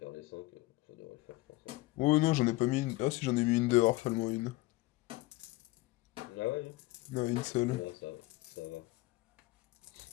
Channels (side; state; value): right; quieter; 19.8 dB